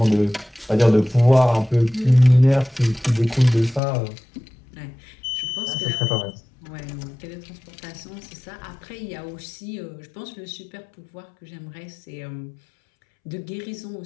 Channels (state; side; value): drops out; right; at 3.8 s